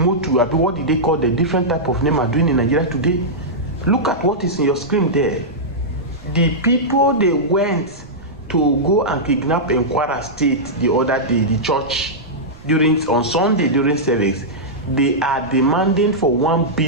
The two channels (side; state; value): right; noise; rumble, 20 dB below the sound